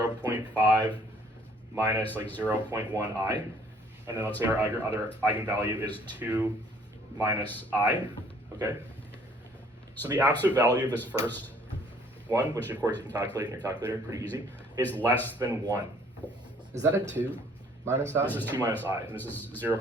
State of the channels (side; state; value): both; normal; correlation 0.59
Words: minus like 0.1i, and then let's say our other eigenvalue is 2 minus I, okay? So the absolute value of this first one, which of course you can calculate in your calculator, pretty easy, is less than 1. Is that a 2 minus I? This is 2 minus I, and this is